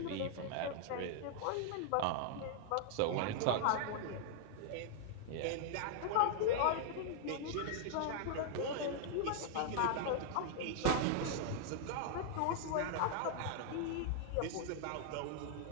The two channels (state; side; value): different; both; correlation -0.01